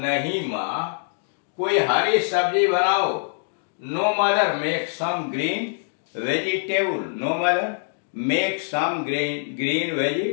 माँ कोई हरी सब्जी बनाओ। No mother make some green vegetable, no mother make some green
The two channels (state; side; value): silent; right; digital silence